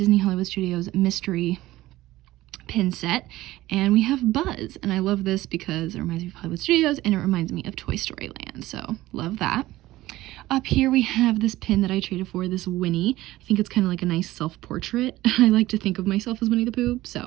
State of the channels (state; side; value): quieter; left; 16.7 dB